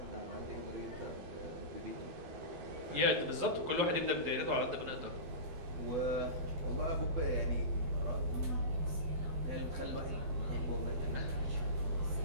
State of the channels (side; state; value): left; late; 11 ms